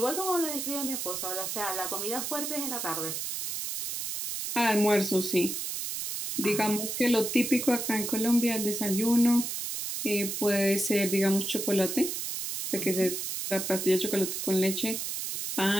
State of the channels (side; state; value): right; noise; hiss, 4 dB below the sound